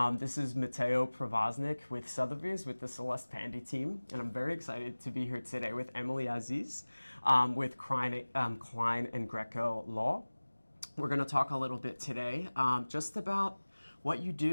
This is Mateo Pravaznik with Sotheby's with the Celeste Pandy team, and I'm very excited to be here today with Emily Aziz with Klein and Greco Law. We're going to talk a little bit today just about what you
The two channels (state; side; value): inverted; both; correlation -1.00